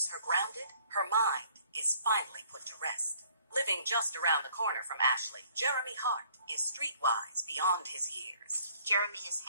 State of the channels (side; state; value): both; inverted; correlation -0.59